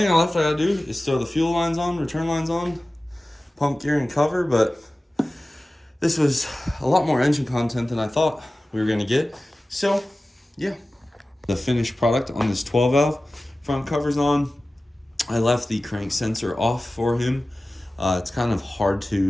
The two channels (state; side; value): normal; both; correlation 0.96